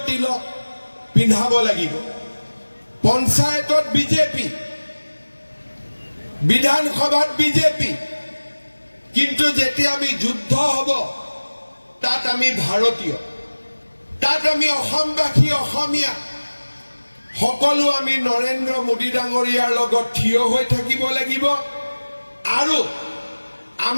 তিলক পিন্ধাব লাগিব। পঞ্চায়তত বিজেপি, বিধানসভাত বিজেপি, কিন্তু যেতিয়া আমি যুদ্ধ হ'ব তাত আমি ভাৰতীয়, তাত আমি অসমবাসী, অসমীয়া সকলো আমি নৰেন্দ্ৰ মোদী ডাঙৰীয়াৰ লগত থিয় হৈ থাকিব লাগিব আৰু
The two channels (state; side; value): inverted; both; correlation -1.00